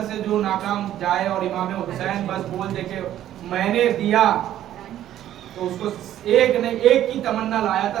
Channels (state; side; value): quieter; left; 12.1 dB